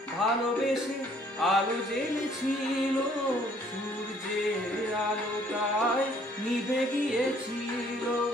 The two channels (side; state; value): both; normal; correlation 0.61